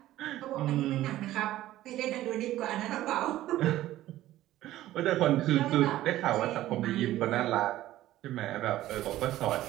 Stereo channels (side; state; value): left; quieter; 14.7 dB